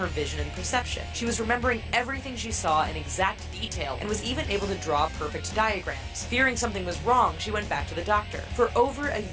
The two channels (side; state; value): both; identical; correlation 1.00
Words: vision and perception. She was remembering everything she saw in exact detail and was even able to draw perfect diagrams. Fearing something was wrong, she went back to the doctor. For over a